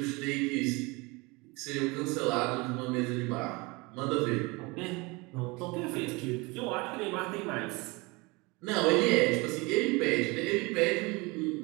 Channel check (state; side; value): quieter; left; 25.8 dB